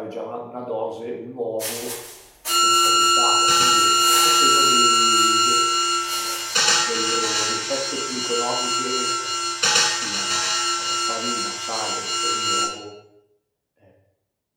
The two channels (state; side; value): identical; both; correlation 1.00